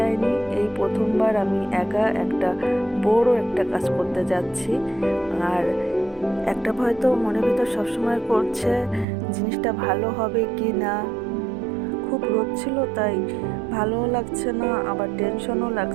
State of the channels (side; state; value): left; drops out; at 9.1 s